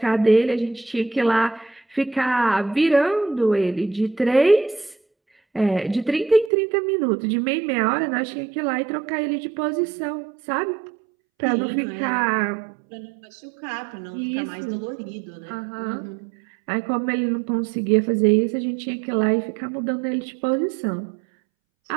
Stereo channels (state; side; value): drops out; left; at 6.5 s